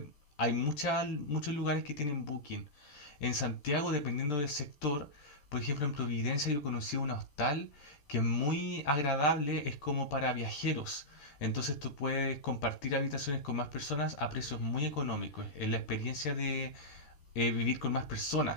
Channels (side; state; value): right; late; 13 ms